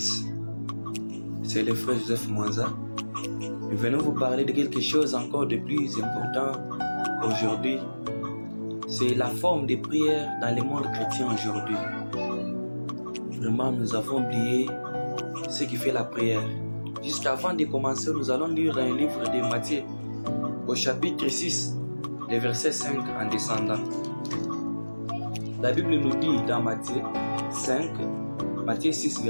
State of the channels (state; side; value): inverted; both; correlation -1.00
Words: C'est le frère Joseph Mwanza. Nous venons vous parler de quelque chose encore de plus important aujourd'hui. C'est la forme de prière dans le monde chrétien aujourd'hui. Vraiment, nous avons oublié ce qui fait la prière. Jusqu'avant de commencer, nous allons lire un livre de Matthieu au chapitre 6, le verset 5 en descendant. La Bible nous dit dans Matthieu 6,